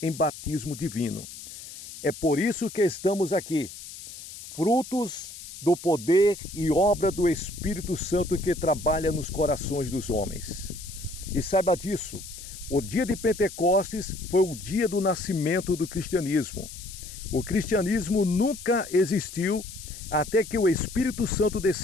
batismo divino. É por isso que estamos aqui, frutos do poder e obra do Espírito Santo que trabalha nos corações dos homens. E saiba disso, o dia de Pentecostes foi o dia do nascimento do cristianismo. O cristianismo nunca existiu até que o Espírito Santo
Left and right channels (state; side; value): noise; left; hiss, 13 dB below the sound